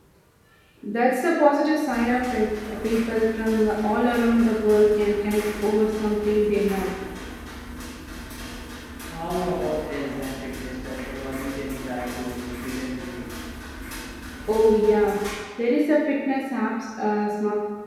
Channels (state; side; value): identical; both; correlation 1.00